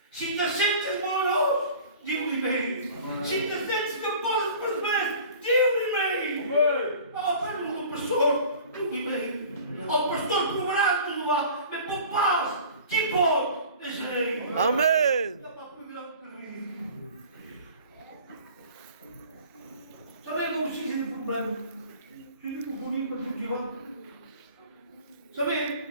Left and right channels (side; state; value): both; inverted; correlation -0.44